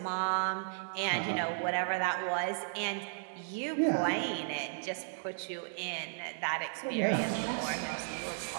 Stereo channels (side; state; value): left; silent; digital silence